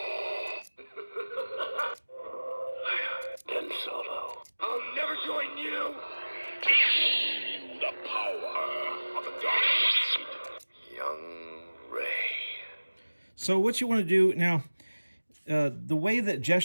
Ben Solo. I'll never join you. the power of the dark side. Young Rey. So what you want to do now, the way that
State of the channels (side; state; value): both; inverted; correlation -1.00